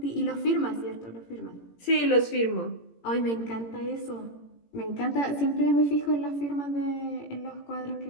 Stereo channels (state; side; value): late; right; 17 ms